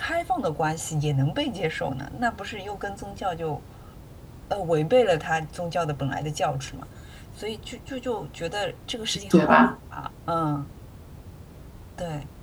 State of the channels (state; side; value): identical; both; correlation 1.00